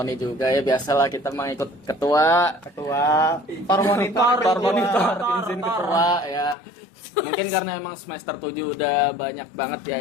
juga ya, biasalah kita mah ikut ketua tor monitor izin ketua ya. Mungkin karena emang semester 7 udah banyak banget ya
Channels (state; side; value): drops out; right; at 6.6 s